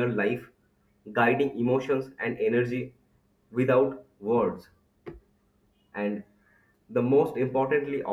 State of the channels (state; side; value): identical; both; correlation 1.00